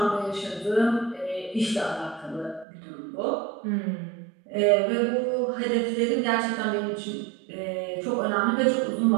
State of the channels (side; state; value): left; drops out; at 2.7 s